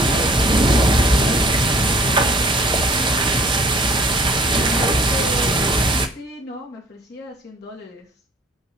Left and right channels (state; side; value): normal; both; correlation 0.54